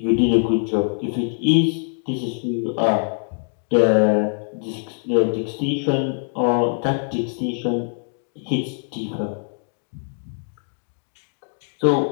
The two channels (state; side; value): silent; right; 56 dB below the other